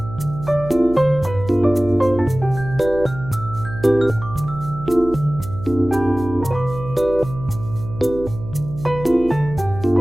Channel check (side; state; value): right; noise; hum, 12 dB below the sound